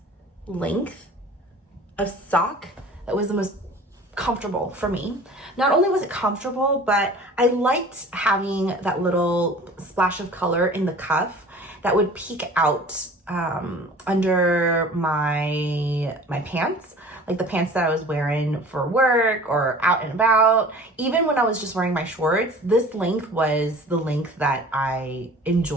length of sock that was the most comfortable for me. Not only was it comfortable, but I liked having that little splash of color in the cuff that would peek out under my pants, like the pants that I was wearing for work or out and about. Even when I was just wearing my shorts, this length was the length that I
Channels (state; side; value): normal; both; correlation 0.44